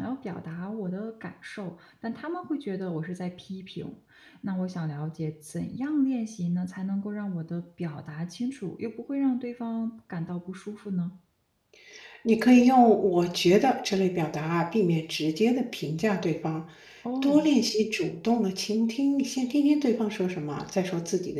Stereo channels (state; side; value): identical; both; correlation 1.00